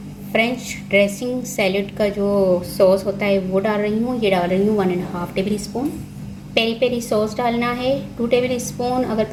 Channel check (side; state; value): both; identical; correlation 1.00